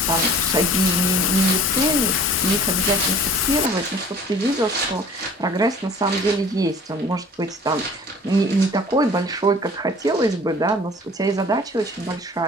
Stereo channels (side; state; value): both; normal; correlation 0.48